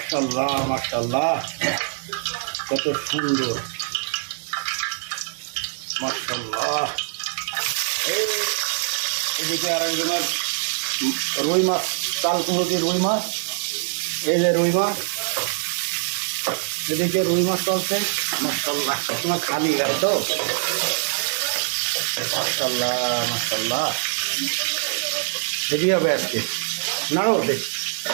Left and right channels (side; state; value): left; silent; digital silence